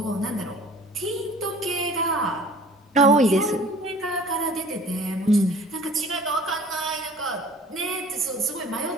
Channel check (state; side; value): normal; both; correlation 0.48